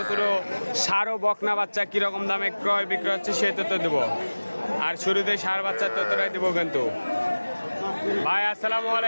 ছোট ষাঁড় ও বকনা বাচ্চা কিরকম দামে ক্রয় বিক্রয় হচ্ছে সেই তথ্য দেবো। আর শুরুতে ষাঁড় বাচ্চার তথ্যটাই দেবো কিন্তু। ভাই আসসালামু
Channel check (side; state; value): both; inverted; correlation -1.00